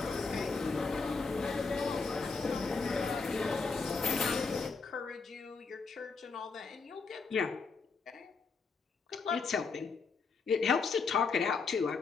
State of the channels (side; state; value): right; quieter; 4.7 dB